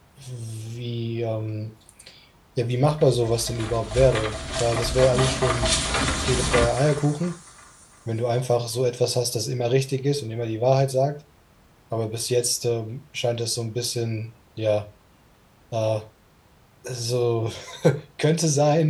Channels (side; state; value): both; identical; correlation 1.00